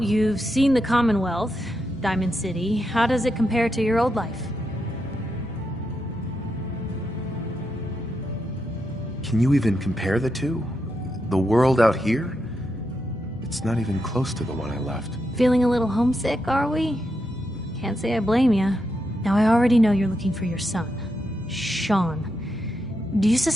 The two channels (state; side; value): normal; both; correlation 0.84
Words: seen the Commonwealth, Diamond City. How does it compare to your old life? Can you even compare the two? The world out here? It's not even close to the one I left. Feeling a little homesick, are we? Can't say I blame you. Now, I already know you're looking for your son, Sean. Do you